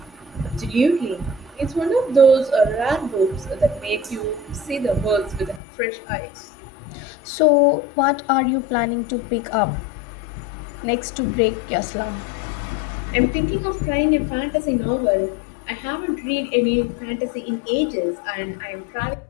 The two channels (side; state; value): right; drops out; at 5.6 s